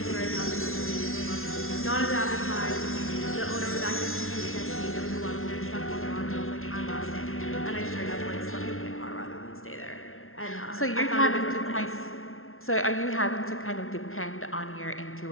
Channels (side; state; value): right; late; 0.62 ms